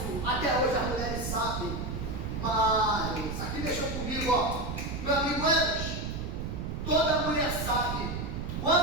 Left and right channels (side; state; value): right; noise; rumble, 4 dB below the sound